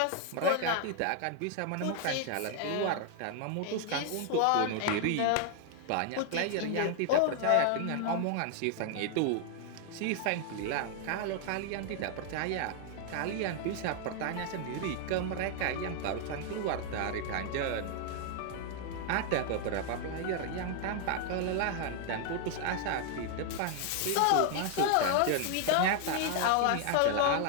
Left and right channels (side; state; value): both; different; correlation 0.00